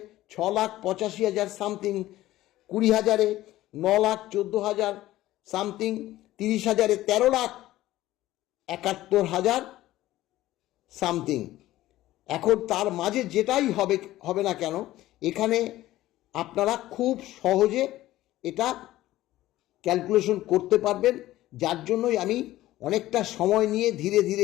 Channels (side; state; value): right; quieter; 15.6 dB